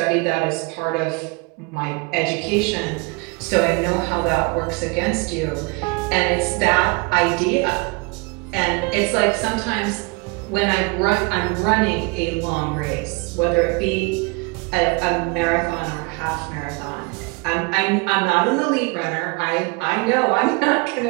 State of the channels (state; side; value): quieter; left; 28.8 dB